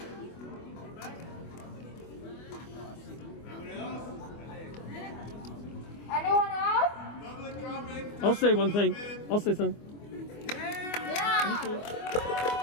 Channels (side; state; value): right; late; 24 ms